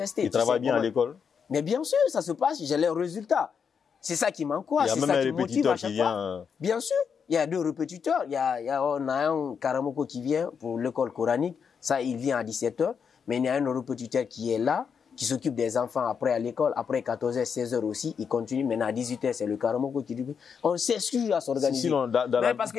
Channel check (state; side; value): quieter; right; 6.6 dB